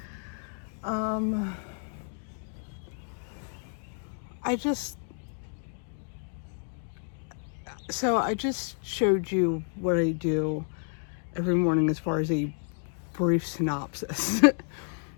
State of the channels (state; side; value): silent; right; 58 dB below the other